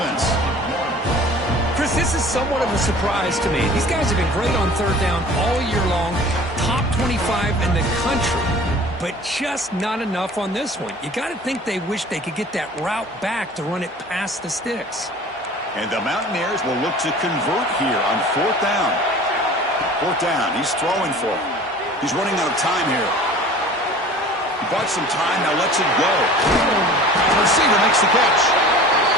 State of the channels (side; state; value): both; normal; correlation 0.44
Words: Chris, this is somewhat of a surprise to me. These guys have been great on third down all year long, top 25 in the country, but just not enough on this one. You got to think they wish they could get that route back to run it past the sticks. And the Mountaineers will look to convert here on fourth down. Fourth down, he's throwing for it. He's running out of time here. He bought some time, now lets it go. The receiver makes the catch.